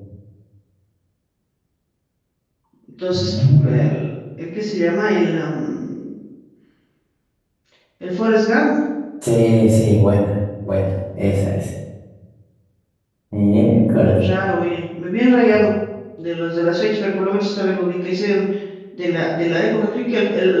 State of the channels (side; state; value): both; identical; correlation 1.00